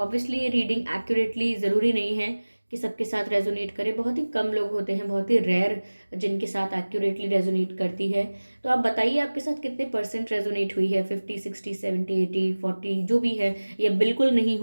ये रीडिंग एक्यूरेटली ज़रूरी नहीं है कि सबके साथ रेजोनेट करे, बहुत ही कम लोग होते हैं, बहुत ही रेयर जिनके साथ एक्यूरेटली रेजोनेट करती है। तो आप बताइए आपके साथ कितने परसेंट रेजोनेट हुई है, 50, 60, 70, 80, 40 जो भी है, या बिल्कुल नहीं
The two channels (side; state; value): both; inverted; correlation -1.00